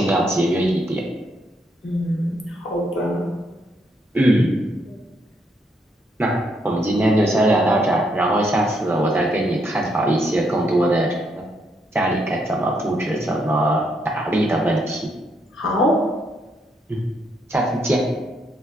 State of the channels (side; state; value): both; normal; correlation 0.75